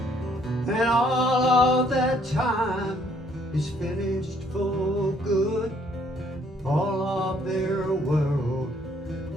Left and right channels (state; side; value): normal; both; correlation 0.65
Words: And all of that time is finished for good. All of their world,